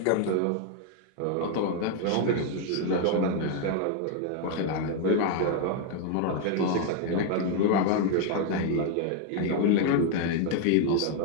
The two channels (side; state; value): both; different; correlation 0.00